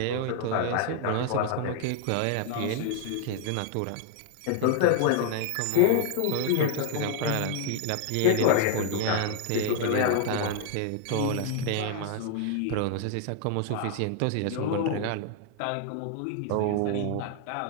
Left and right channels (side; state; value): both; different; correlation 0.00